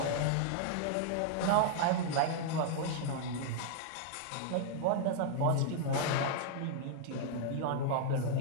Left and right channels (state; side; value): different; both; correlation -0.01